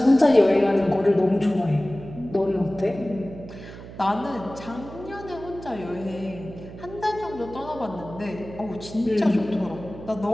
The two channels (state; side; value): noise; right; hum, 14 dB below the sound